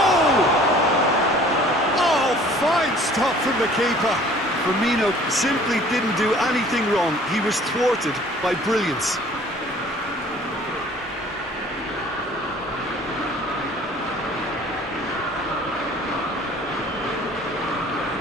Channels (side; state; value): both; normal; correlation 0.51